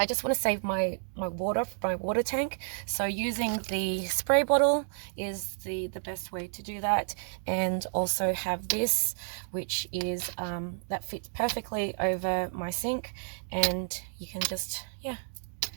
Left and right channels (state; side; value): silent; left; digital silence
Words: just want to save my water tank. So using the spray bottle is the best way to do that. And also have this, which is that fits perfectly over my sink, and you can just, yeah,